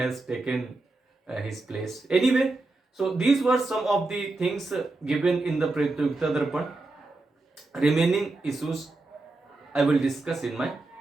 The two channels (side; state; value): left; quieter; 3.2 dB